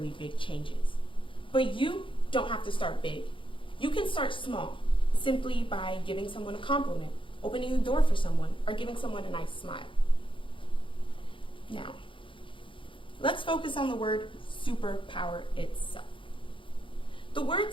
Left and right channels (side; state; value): right; late; 0.25 ms